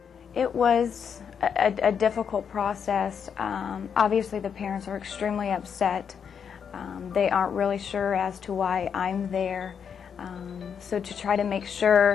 It was a difficult process. Obviously the parents are extremely upset. They aren't really sure as to why I'm there. So to try to make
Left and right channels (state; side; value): quieter; right; 7.2 dB